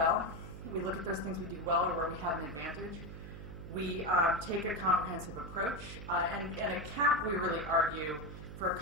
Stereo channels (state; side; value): noise; right; hum, 11 dB below the sound